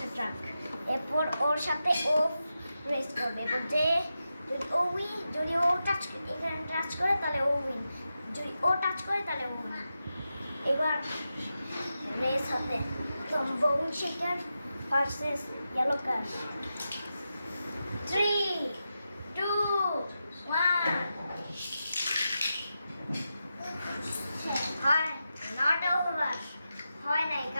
ট্রাক। এরপর ওর সাথে ও রেস করবে। এরপর যে যদি ও টাচ এখানে টাচ করে তাহলে ও উইন, যদি ও টাচ করে তাহলে ও উইন। এবার রেস হবে বোন শেকার ভার্সেস ইয়েলো কার। 3, 2, 1। হয় নট ওভার, হয় নাই,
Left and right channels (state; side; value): inverted; both; correlation -0.89